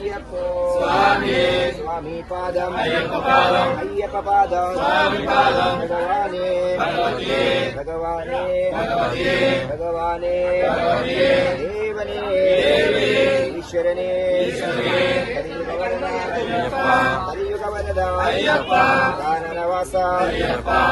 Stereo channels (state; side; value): identical; both; correlation 1.00